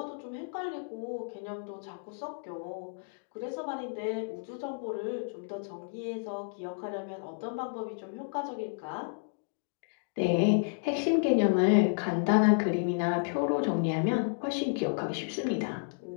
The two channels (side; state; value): right; silent; digital silence